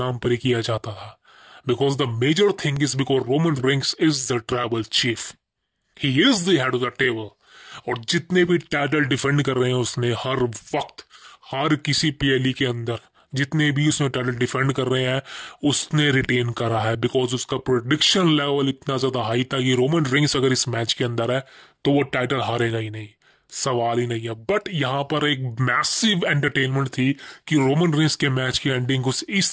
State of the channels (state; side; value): identical; both; correlation 1.00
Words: पर ही किया जाता था, because the major thing is because Roman Reigns is the tribal chief, he is the head of the table. और जितने भी टाइटल डिफेंड कर रहे हैं उसने हर वक्त, हर किसी पीएलई के अंदर जितने भी उसने टाइटल डिफेंड कर रहे हैं उसने रिटेन करा है, बिकॉज उसका प्रेडिक्शन लेवल इतना ज्यादा हाई था कि रोमन रेंस अगर इस मैच के अंदर है तो वो टाइटल हारेगा ही नहीं, सवाल ही नहीं है। बट यहां पर एक मैसिव एंटरटेनमेंट थी कि रोमन रेंस के मैच की एंडिंग कुछ